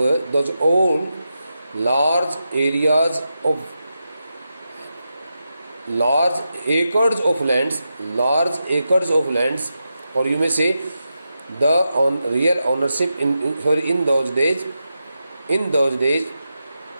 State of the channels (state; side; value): inverted; both; correlation -0.88